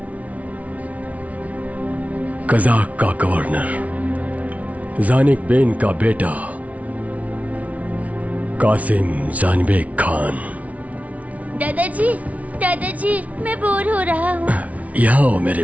कज़ाक का गवर्नर। जानिक बेन का बेटा कासिम जानबेग खान। दादाजी मैं बोर हो रहा हूँ। यहाँ हो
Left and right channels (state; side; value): late; left; 0.068 ms